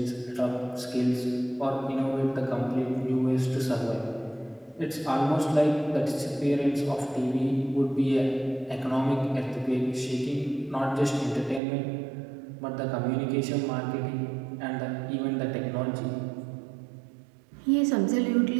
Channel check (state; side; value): drops out; left; at 11.6 s